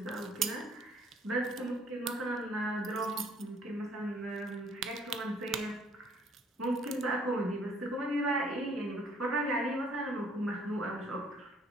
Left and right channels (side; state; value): both; normal; correlation 0.61